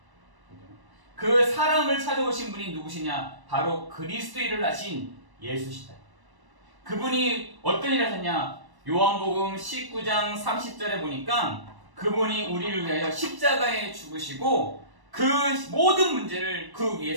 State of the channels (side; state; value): left; late; 1.1 ms